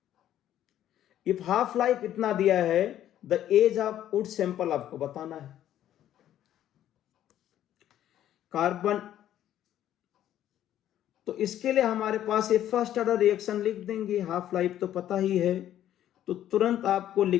if half life इतना दिया है, the age of wood sample आपको बताना है। कार्बन, तो इसके लिए हमारे पास ये फर्स्ट ऑर्डर रिएक्शन लिख देंगे, हाफ लाइफ तो पता ही है, तो तुरंत आपको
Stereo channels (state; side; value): quieter; right; 11.7 dB